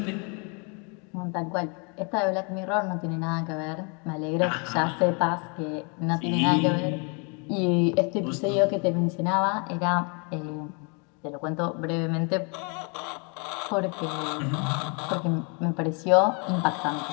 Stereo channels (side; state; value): right; quieter; 34.8 dB